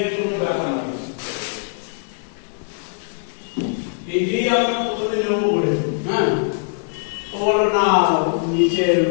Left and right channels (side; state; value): right; silent; 56 dB below the other